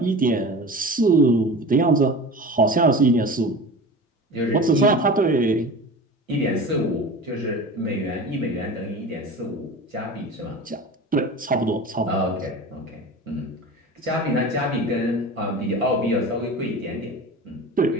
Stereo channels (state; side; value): normal; both; correlation 0.33